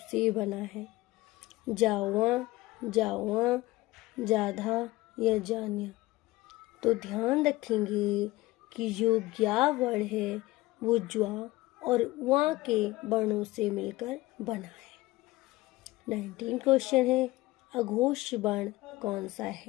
से बना है? जावा, जावा, जाधा या जान्या? तो ध्यान रखेंगे कि जो ज्ञा वर्ण है वो ज्वा और वा के वर्णों से मिलकर बना है। 19 क्वेश्चन है, अघोष वर्ण कौन सा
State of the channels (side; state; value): right; quieter; 19.0 dB